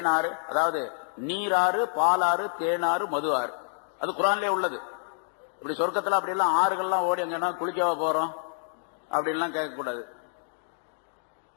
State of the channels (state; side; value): silent; right; digital silence